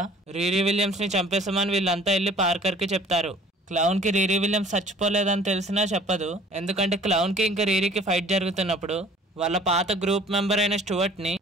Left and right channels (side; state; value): both; normal; correlation 0.51